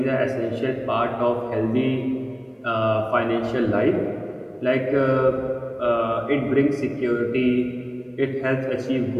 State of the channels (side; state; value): both; identical; correlation 1.00